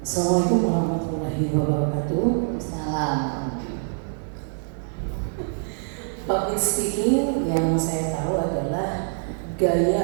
Assalamualaikum warahmatullahi wabarakatuh. Salam. Public speaking yang saya tahu adalah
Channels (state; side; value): silent; left; 59 dB below the other